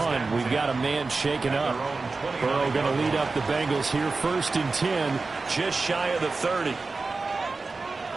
we've got a man shaken up. Burrow going to lead up the Bengals here, 1st and 10, just shy of the 30.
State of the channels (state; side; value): quieter; left; 3.9 dB